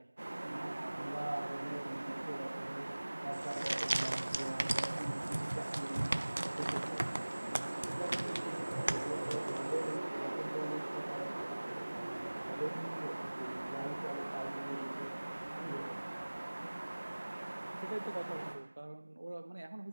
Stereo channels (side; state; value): both; inverted; correlation -1.00